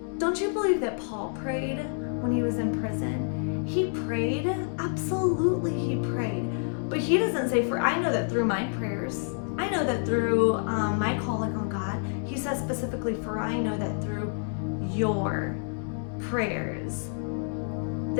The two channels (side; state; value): right; silent; 59 dB below the other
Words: Don't you believe that Paul prayed when he was in prison? He prayed. Absolutely he prayed. But he doesn't say, for I know that through my prayers, I know that through my calling on God. He says specifically, for I know that through your prayers.